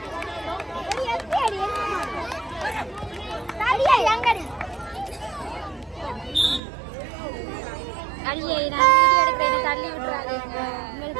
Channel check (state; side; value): drops out; left; at 6.6 s